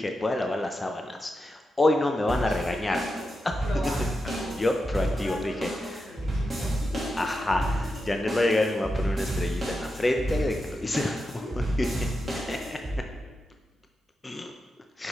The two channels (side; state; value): both; normal; correlation 0.89